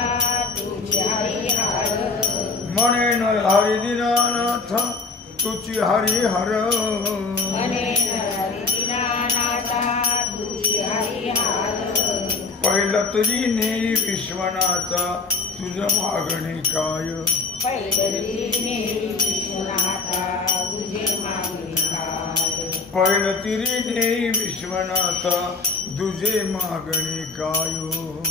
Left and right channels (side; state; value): right; quieter; 4.1 dB